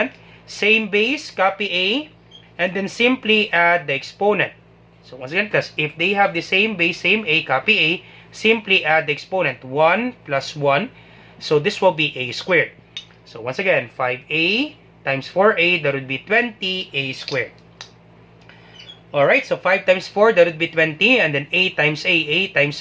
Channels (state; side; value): identical; both; correlation 1.00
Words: Same base, copy a. And then simply add the exponent. So once again class, if they have the same base, same a, copy a. Simply add the exponent. 1 plus 1. So this will be a squared. So once again, 5a times 4a, that would be 20a squared. Alright, so 5 times 4, that would be 20. And then a times a